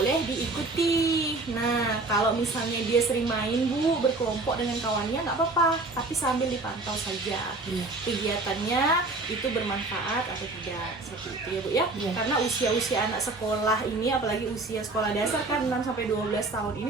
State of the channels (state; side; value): quieter; left; 3.2 dB